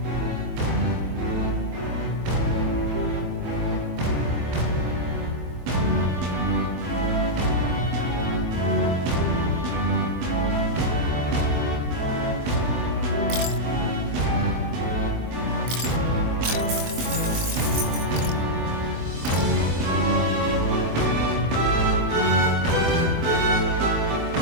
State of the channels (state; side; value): late; left; 24 ms